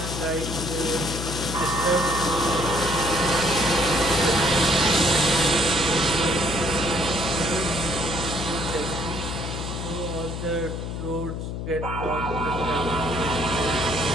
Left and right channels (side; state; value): left; noise; hum, 5 dB below the sound